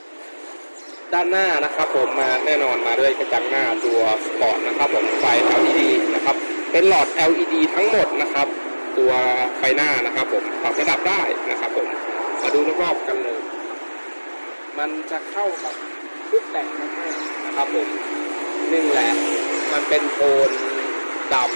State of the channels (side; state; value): both; inverted; correlation -1.00